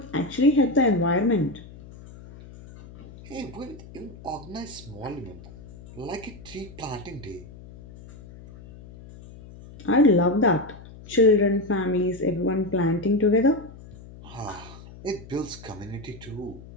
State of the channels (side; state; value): left; noise; hum, 18 dB below the sound